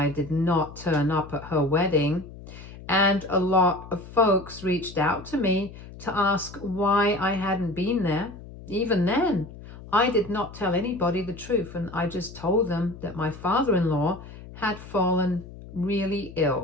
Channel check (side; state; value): left; noise; hum, 16 dB below the sound